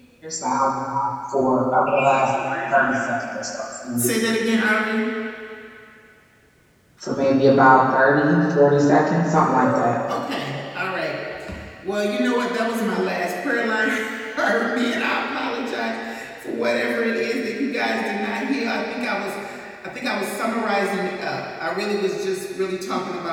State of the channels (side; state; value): both; identical; correlation 1.00